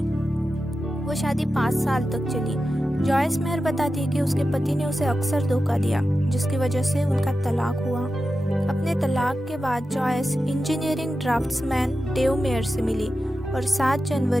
वो शादी 5 साल तक चली। जॉयस मेयर बताती है कि उसके पति ने उसे अक्सर धोखा दिया, जिसकी वजह से उनका तलाक हुआ। अपने तलाक के बाद Joyce engineering draftsman Dave Meyer से मिली और 7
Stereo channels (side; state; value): both; normal; correlation 0.92